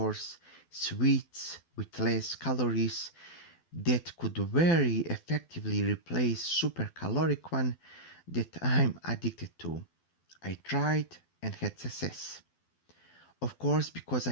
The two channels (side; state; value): right; late; 12 ms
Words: sweets with less calories that could very effectively replace super caloric one that I'm addicted to. I tried and had success. Of course, because